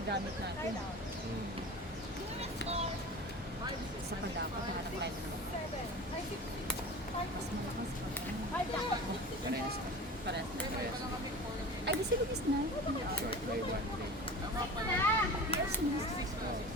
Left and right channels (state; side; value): normal; both; correlation 0.35